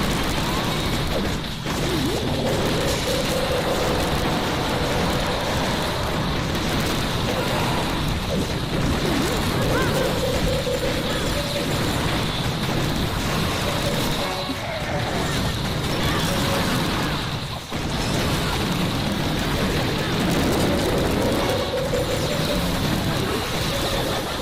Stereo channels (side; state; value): both; identical; correlation 1.00